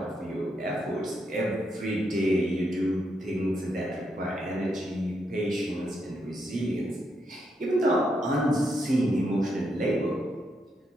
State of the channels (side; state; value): both; normal; correlation 0.80